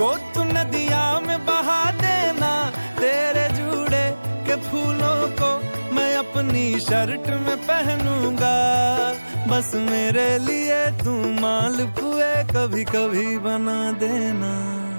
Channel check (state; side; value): inverted; both; correlation -1.00